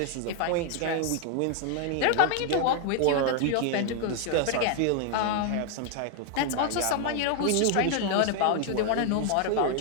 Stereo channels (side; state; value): both; different; correlation 0.01